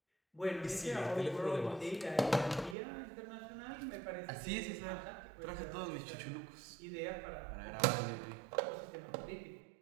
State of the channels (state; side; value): drops out; left; at 2.8 s